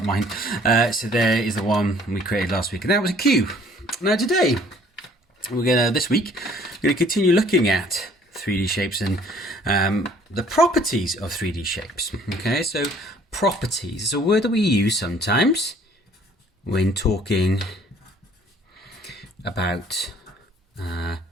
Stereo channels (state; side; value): normal; both; correlation 0.57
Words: mine. So there is the one we created last week, and that was a cube. Now today, this week, we're going to continue looking at 3D shapes and the properties of 3D shapes. Okay, so properties is a word that we use sometimes when talking about